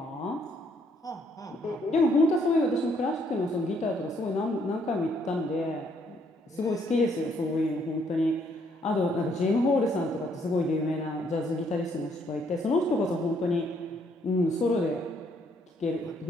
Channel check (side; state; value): both; normal; correlation 0.69